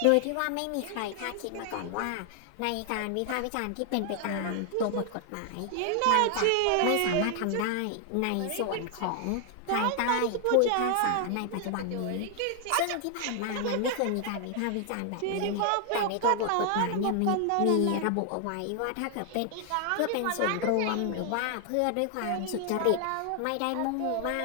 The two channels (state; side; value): different; both; correlation 0.00